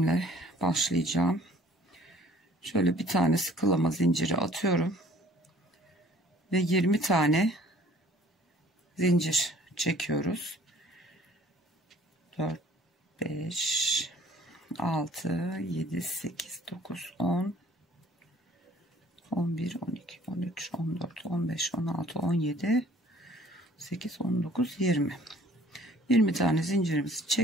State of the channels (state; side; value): normal; both; correlation 0.55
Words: başlayacağım. Şöyle bir tane sıkılama zinciri atıyorum ve 20 tane zincir çekiyoruz. 4 5 6 7 8 9 10 11 12 13 14 15 16 17 8 19 20 tane zincirimizi